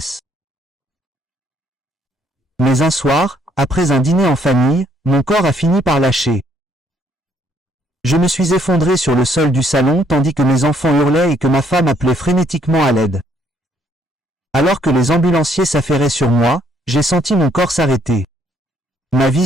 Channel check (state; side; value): normal; both; correlation 0.68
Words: Mais un soir, après un dîner en famille, mon corps a fini par lâcher. Je me suis effondré sur le sol du salon tandis que mes enfants hurlaient et que ma femme appelait frénétiquement à l'aide. Alors que les ambulanciers s'affairaient sur moi, j'ai senti mon corps s'arrêter. Ma